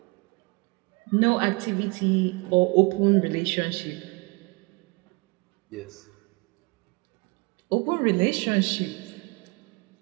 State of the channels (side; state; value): left; quieter; 28.6 dB